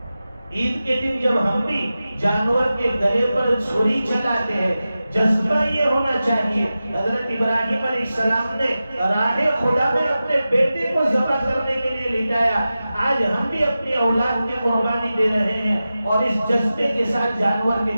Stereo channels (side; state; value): both; inverted; correlation -0.94